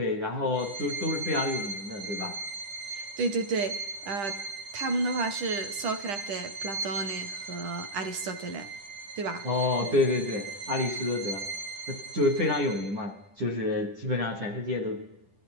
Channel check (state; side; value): late; left; 10 ms